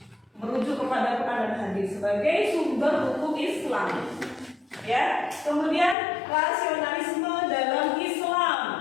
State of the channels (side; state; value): right; drops out; at 6.0 s